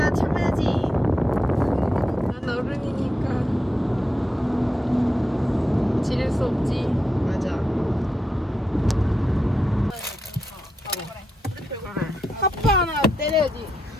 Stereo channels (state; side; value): normal; both; correlation 0.85